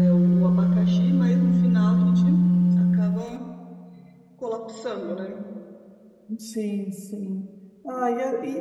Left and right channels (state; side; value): identical; both; correlation 1.00